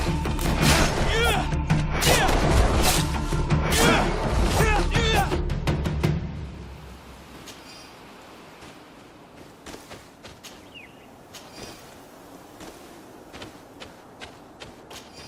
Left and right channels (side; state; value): both; identical; correlation 1.00